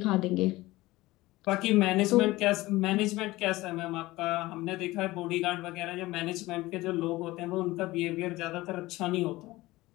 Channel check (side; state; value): right; quieter; 19.0 dB